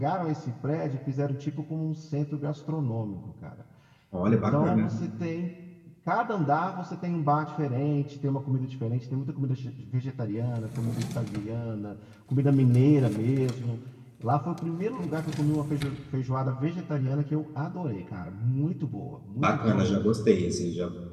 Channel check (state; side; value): identical; both; correlation 1.00